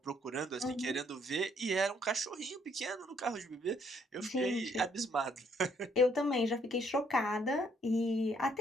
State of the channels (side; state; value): both; normal; correlation 0.68